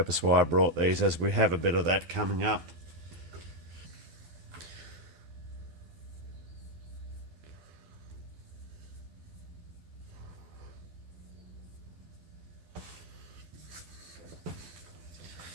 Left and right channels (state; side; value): late; left; 12 ms